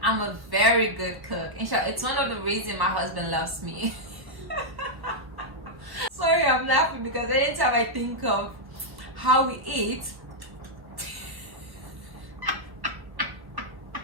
I'm a very good cook. In fact, it's one of the reasons my husband loves me. Sorry, I'm laughing because anytime I think of how we eat,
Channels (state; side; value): late; left; 1.4 ms